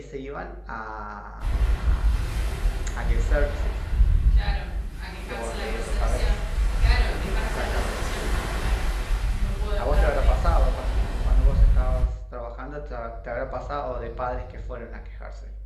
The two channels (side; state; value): both; identical; correlation 1.00